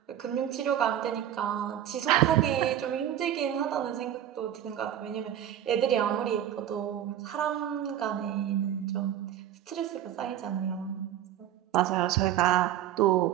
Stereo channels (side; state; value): left; quieter; 11.1 dB